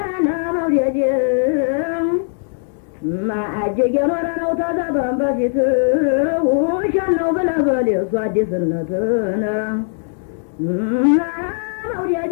መውደድ ማአጀገ ኖረ ነው ተዘበን በፊት ውሸት ነው ብለህ በል የእሱ አዲስነትን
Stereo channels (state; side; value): silent; right; 66 dB below the other